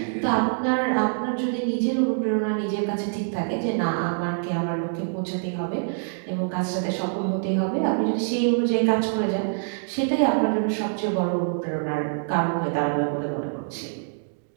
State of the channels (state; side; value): silent; left; digital silence